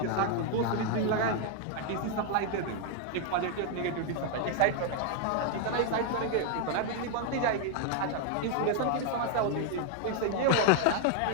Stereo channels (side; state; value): both; different; correlation 0.00